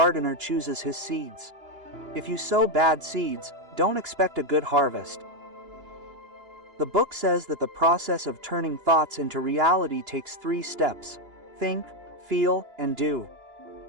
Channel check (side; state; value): left; late; 2.9 ms